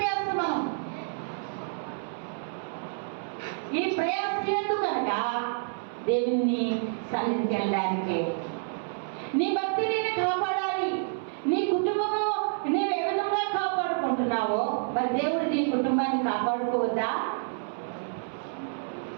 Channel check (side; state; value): left; silent; 59 dB below the other